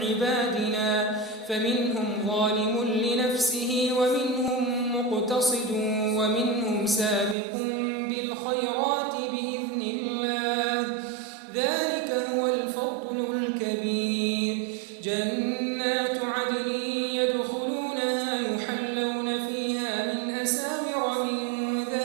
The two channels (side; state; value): left; drops out; at 7.4 s